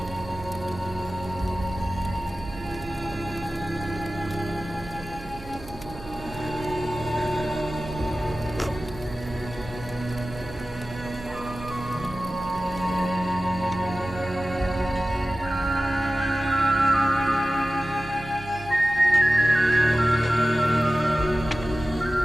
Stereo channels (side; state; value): right; noise; hum, 16 dB below the sound